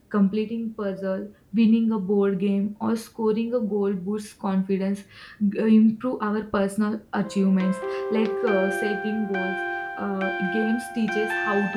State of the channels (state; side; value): identical; both; correlation 1.00